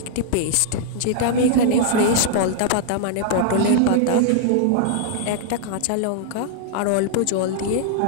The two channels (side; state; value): both; different; correlation -0.01